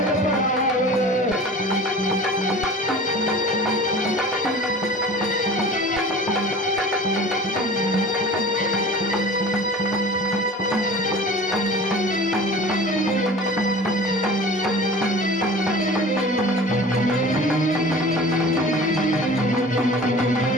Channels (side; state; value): both; normal; correlation 0.40